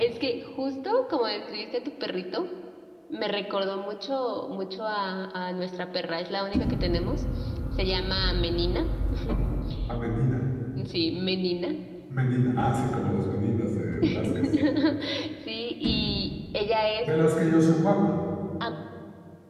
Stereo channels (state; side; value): identical; both; correlation 1.00